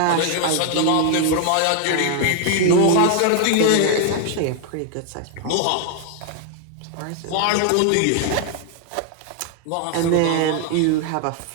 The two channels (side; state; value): both; different; correlation 0.00